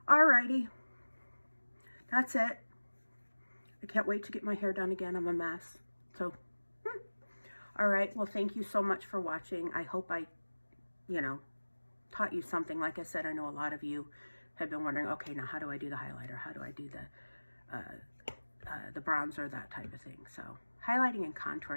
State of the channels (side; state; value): both; inverted; correlation -1.00